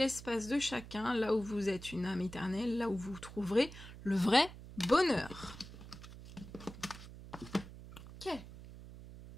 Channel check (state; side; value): noise; right; hum, 15 dB below the sound